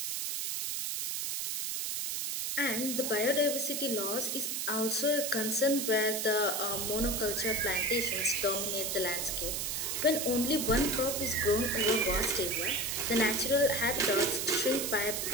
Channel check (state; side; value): noise; right; hiss, 1 dB below the sound